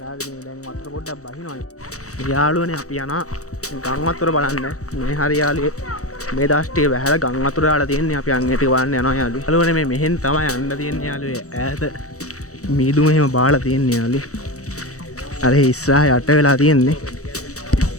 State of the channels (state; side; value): late; right; 0.65 ms